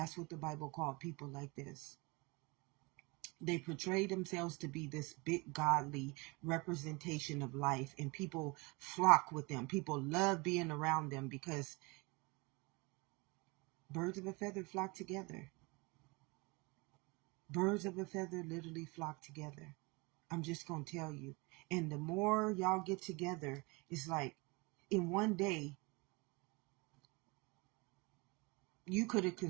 what the Bible called people like this. They portray themselves to be this big godly representation of life, and people flock with them. People love being around them because birds of a feather flock together. Birds of a feather literally flock together. I'm just going to tell you. And the more y'all get together, it's like in one day, you could have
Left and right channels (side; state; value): left; quieter; 27.0 dB